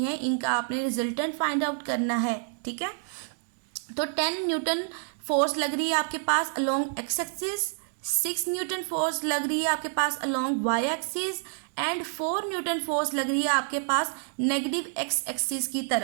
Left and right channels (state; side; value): silent; left; digital silence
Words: है इनका आपने रिजल्टेंट फाइंड आउट करना है। ठीक है, तो 10 न्यूटन फोर्स लग रही है आपके पास along X axis, 6 newton force लग रही है आपके पास along Y axis and 4 newton force लग रही है आपके पास नेगेटिव एक्स एक्सिस की